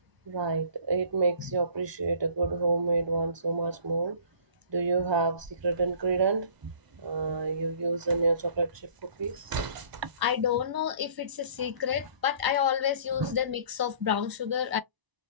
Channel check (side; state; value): left; late; 1.0 ms